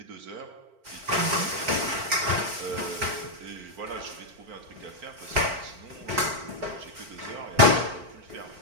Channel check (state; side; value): late; left; 4.2 ms